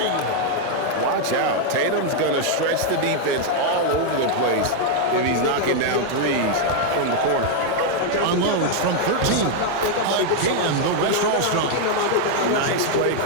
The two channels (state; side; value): different; both; correlation 0.00